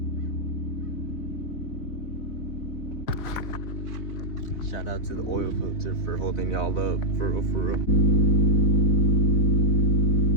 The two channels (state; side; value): late; right; 3.9 ms